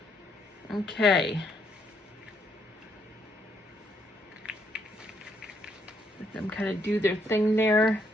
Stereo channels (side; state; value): both; normal; correlation 0.73